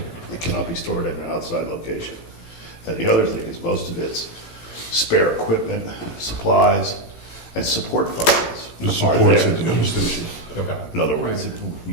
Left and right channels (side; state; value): right; late; 18 ms